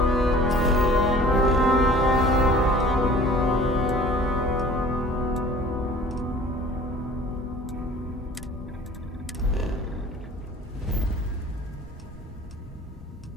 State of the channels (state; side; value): normal; both; correlation 0.47